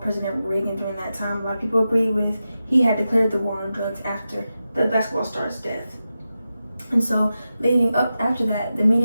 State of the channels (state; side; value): inverted; both; correlation -0.91